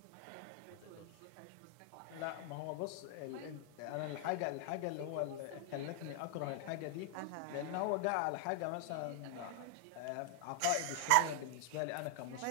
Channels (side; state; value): both; different; correlation 0.00